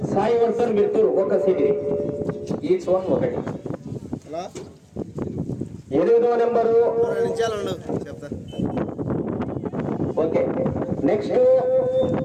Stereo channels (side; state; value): both; identical; correlation 1.00